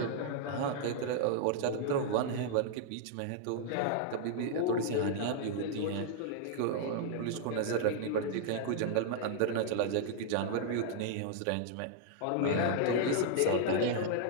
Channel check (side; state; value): both; different; correlation -0.01